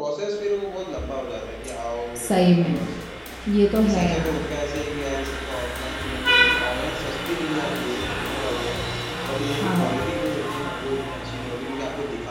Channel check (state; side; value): identical; both; correlation 1.00